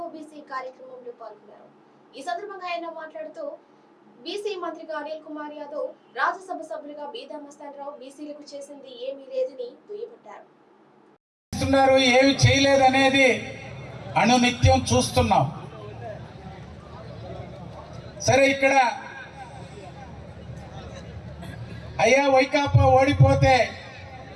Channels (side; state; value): both; identical; correlation 1.00